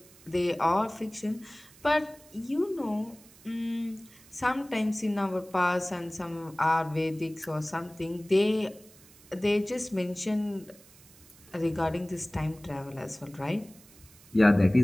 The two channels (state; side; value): noise; right; hiss, 24 dB below the sound